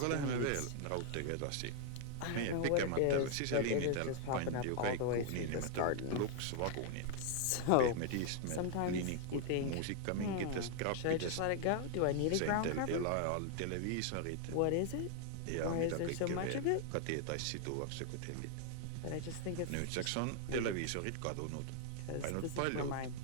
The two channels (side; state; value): both; different; correlation 0.00